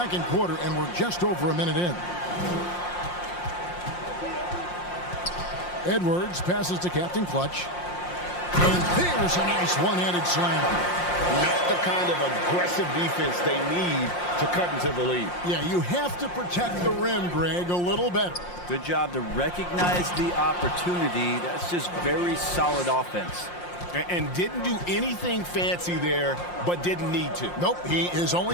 quarter, and we're just over a minute in. Edwards passes to Captain Clutch. And there's a nice one-handed slam. Not the kind of aggressive defense they need to cut into the lead. Yeah, you have to protect the rim, Greg, a little better. Good job to recognize the opportunity. That's just very solid offense. And didn't do anything fancy there, but didn't need to. Nope, his only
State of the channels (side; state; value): right; late; 5.7 ms